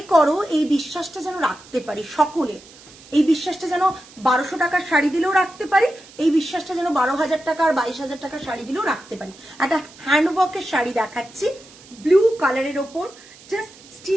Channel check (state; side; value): noise; right; hiss, 22 dB below the sound